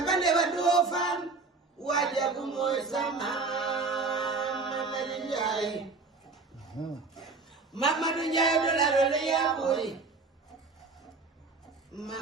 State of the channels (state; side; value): quieter; left; 4.0 dB